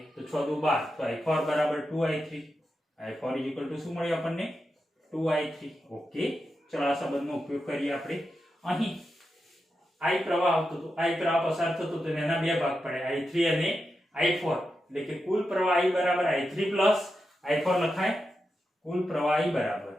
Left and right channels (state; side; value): normal; both; correlation 0.88